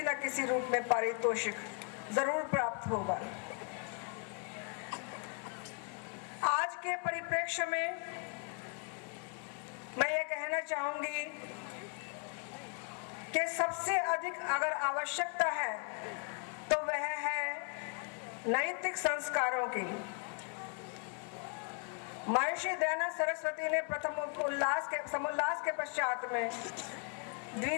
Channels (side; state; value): right; quieter; 38.3 dB